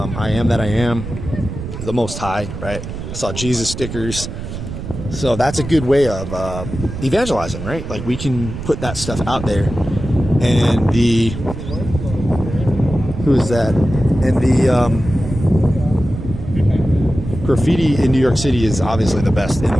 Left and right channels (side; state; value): right; noise; rumble, 8 dB below the sound